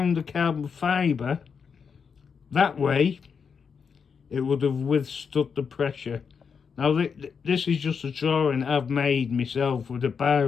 the carbon fibre that way, it would have withstood the pressure. Now this is just a drawing I've made myself with a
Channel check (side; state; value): right; quieter; 6.2 dB